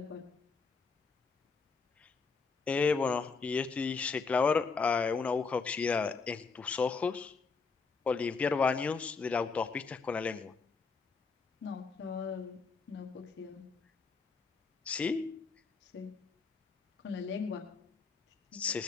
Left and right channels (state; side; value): quieter; right; 4.8 dB